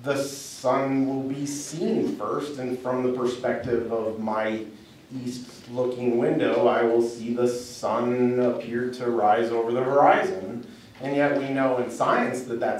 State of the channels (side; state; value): both; identical; correlation 1.00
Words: the sun will be seen first, and from the perspective of my east-looking window, I will see the sun appear to rise over the horizon. And yet we know in science that